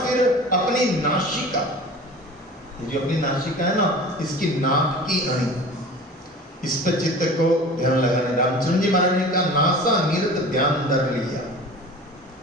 अपनी नासिका, जो अपनी नासिका है ना, इसकी नाक की अणी, इस पर चित्त को ध्यान लगाना। रामचंद्र जी महाराज ने कहा नासा निरत ध्यान धर लिया,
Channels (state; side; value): normal; both; correlation 0.39